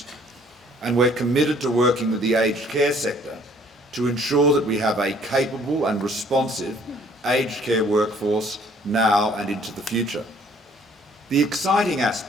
And we're committed to working with the aged care sector to ensure that we have a capable and responsive aged care workforce now and into the future. The exciting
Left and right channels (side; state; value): both; normal; correlation 0.59